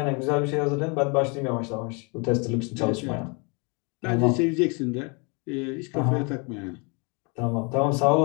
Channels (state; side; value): quieter; right; 32.3 dB